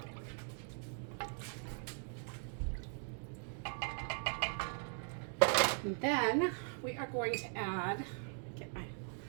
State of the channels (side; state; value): left; silent; 51 dB below the other